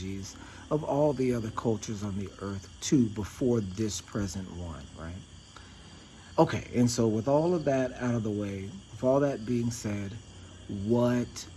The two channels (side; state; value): both; identical; correlation 1.00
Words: of all the other cultures on the earth too before this present one, right? Okay, and so with all of that out of the way, with all that being said, what